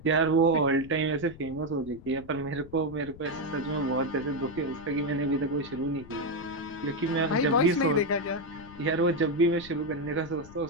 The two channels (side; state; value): left; noise; rumble, 18 dB below the sound